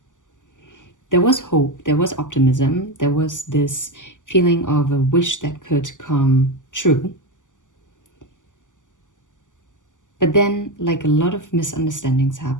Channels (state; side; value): late; right; 0.87 ms